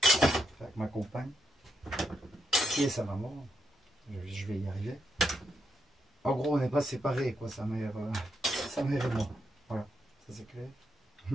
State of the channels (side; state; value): both; normal; correlation 0.81